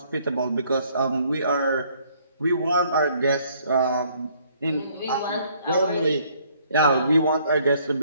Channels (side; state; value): both; inverted; correlation -0.63